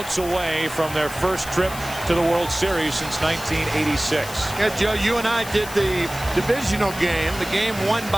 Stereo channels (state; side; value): noise; left; hiss, 12 dB below the sound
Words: away from their first trip to the World Series since 1986. Yeah, Joe, you and I did the divisional game, the game won